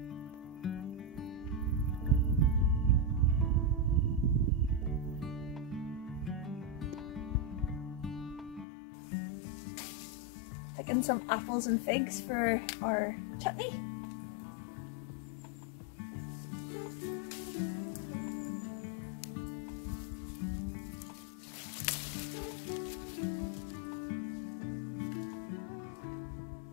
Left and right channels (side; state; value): right; drops out; at 8.7 s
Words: Picking some apples and figs for our chutney.